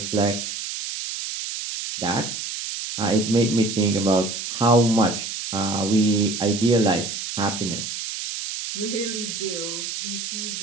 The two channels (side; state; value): right; noise; hiss, 6 dB below the sound